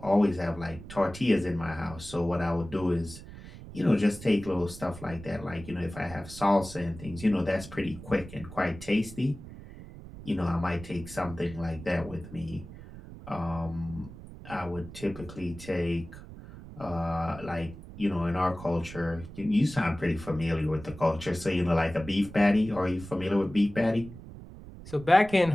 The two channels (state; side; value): noise; right; rumble, 15 dB below the sound